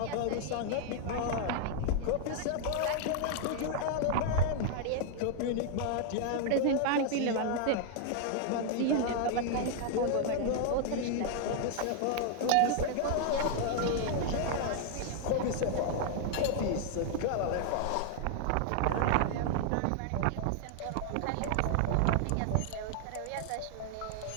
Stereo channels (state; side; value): different; both; correlation 0.00